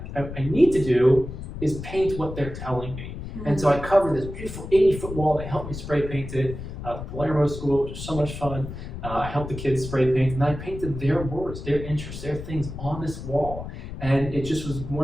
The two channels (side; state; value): left; noise; rumble, 9 dB below the sound